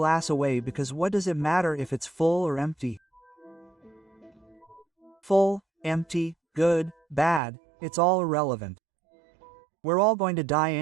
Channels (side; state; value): left; drops out; at 7.4 s